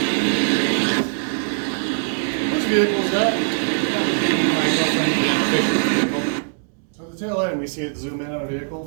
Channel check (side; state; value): left; silent; digital silence